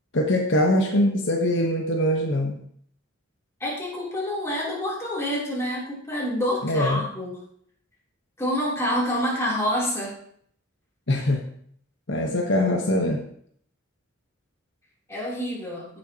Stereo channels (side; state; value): both; normal; correlation 0.31